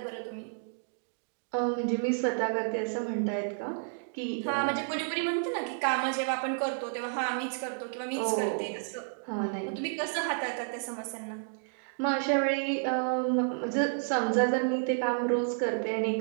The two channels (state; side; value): silent; left; digital silence